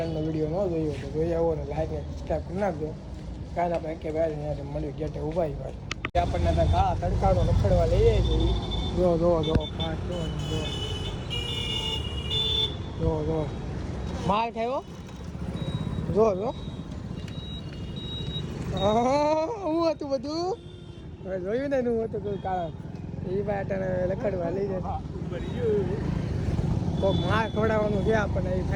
વિડીયો ન જોયો તો જોઈ આવો ને લાઈક ને સબસ્ક્રાઈબ કરી નાખજો કાલે આપણે કે ભાઈ અહીંયા મળ્યું ગેટે ઊભા ભાઈ આપણને આ તડકાનો રખડવા લઈએ છીએ જો ફાસ્ટ જો માલ થયો જો હું હતું બધું જોયું ને હું હતું કોઈ કારણ એ બાટાને લખડવા લઈ જાય તો માલ ખવડાવવાનું ગયા આપણને એ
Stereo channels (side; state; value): both; identical; correlation 1.00